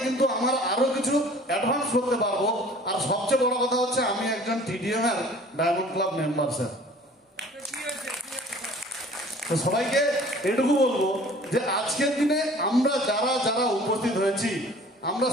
কিন্তু আমার আরো কিছু অ্যাডভান্স করতে পারবো। আর সবচেয়ে বড় কথা হচ্ছে, আমি একজন টিডিএম এর ডায়মন্ড ক্লাব মেম্বার স্যার। তো সবাইকে এটুকু বলবো যে আজকের দিনে আমরা যারা যারা উপস্থিত হয়েছি, আমরা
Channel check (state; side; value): normal; both; correlation 0.49